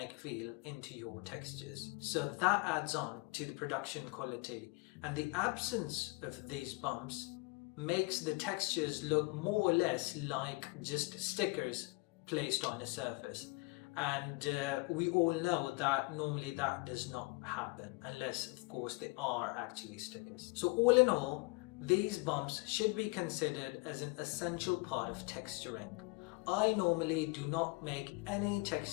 feel into your textures. So that adds on to the production quality, and the absence of these bumps makes the textures look more or less like just stickers placed on a surface. And we all know that normally that does not happen unless, of course, they are actually stickers. So all in all, these bumps should be considered as an essential part of texturing. I normally do not make any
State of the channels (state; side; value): quieter; right; 26.9 dB